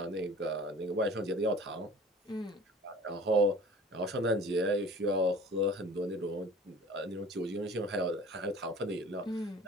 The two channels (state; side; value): normal; both; correlation 0.45